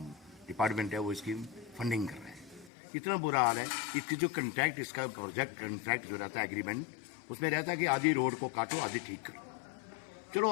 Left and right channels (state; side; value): drops out; right; at 2.7 s